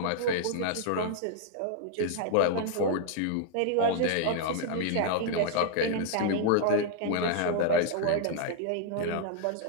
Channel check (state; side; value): different; both; correlation -0.01